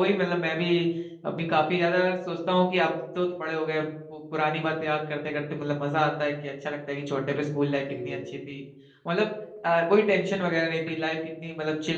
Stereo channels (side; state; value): both; identical; correlation 1.00